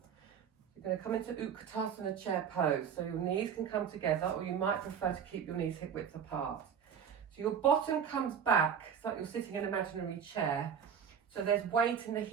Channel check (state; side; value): quieter; left; 7.7 dB